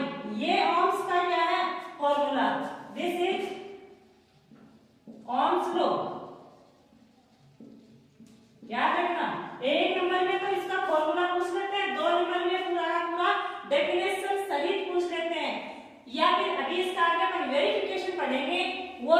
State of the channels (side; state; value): both; identical; correlation 1.00